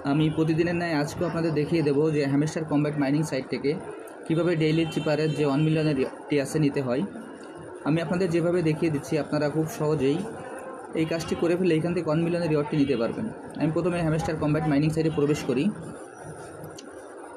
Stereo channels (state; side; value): identical; both; correlation 1.00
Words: আমি প্রতিদিনের ন্যায় আজকেও আপনাদের দেখিয়ে দেবো যে হ্যামস্টার কম্ব্যাট মাইনিং সাইট থেকে কীভাবে ডেইলি চিপারের যে 1 মিলিয়নের টিআসএ নিতে হয়। আমি আপনাদের যেভাবে দেখিয়ে দিচ্ছি আপনারা খুব সহজেই এই কাজটি করে ফেলে এখান থেকে 1 মিলিয়নের রিওয়ার্ডটি নিতে পারবেন। আমি প্রথমে হ্যামস্টার কম্ব্যাট মাইনিং সাইটে প্রবেশ করি।